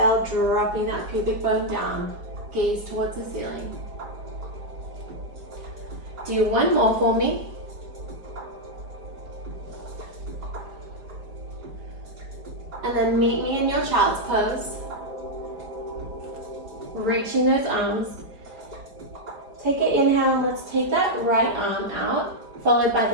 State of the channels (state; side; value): late; left; 4.7 ms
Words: dropping that pubic bone down. Gaze towards the ceiling. Do one more for me. And then meet me in your child's pose. Reaching those arms. Take an inhale, and let's take that right arm out, followed by